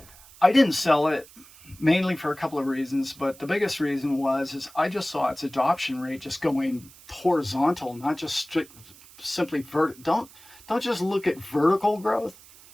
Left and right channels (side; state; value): right; noise; hiss, 22 dB below the sound